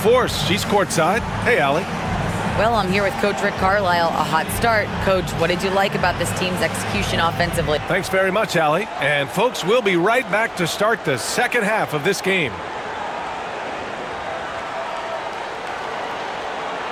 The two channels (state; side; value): identical; both; correlation 1.00